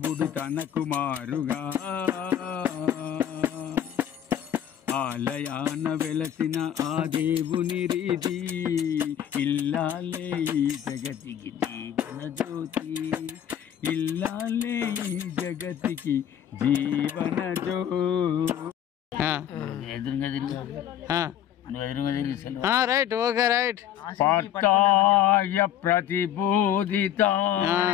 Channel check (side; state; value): right; quieter; 10.2 dB